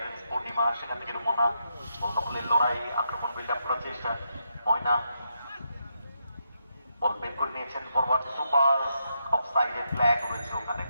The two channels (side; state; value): both; inverted; correlation -0.81